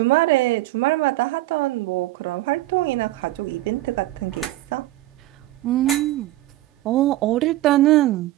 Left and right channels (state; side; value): quieter; left; 16.2 dB